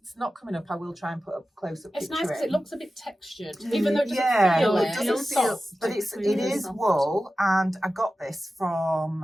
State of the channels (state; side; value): normal; both; correlation 0.94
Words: not coming up, I will try and put a close-up picture. It's nice because it looks a bit textured, even though it doesn't feel but it is wool, and I got this